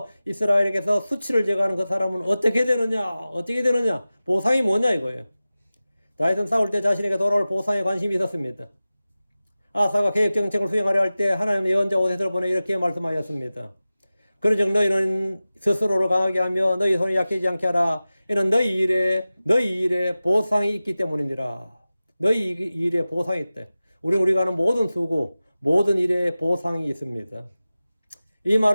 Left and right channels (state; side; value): inverted; both; correlation -0.96